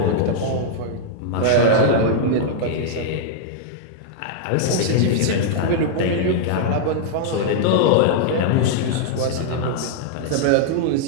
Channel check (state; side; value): different; both; correlation -0.01